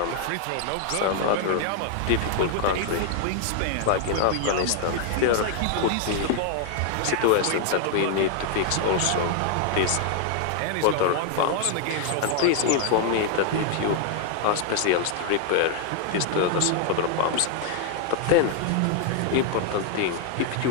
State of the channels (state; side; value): different; both; correlation 0.00